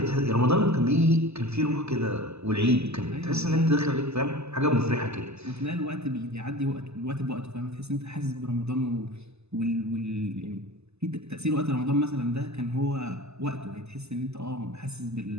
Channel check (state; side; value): late; left; 0.80 ms